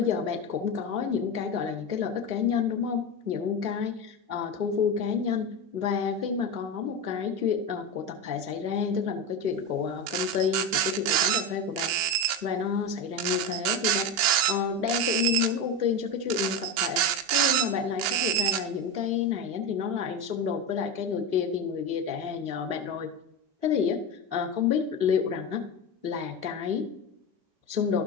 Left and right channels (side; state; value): left; late; 4.1 ms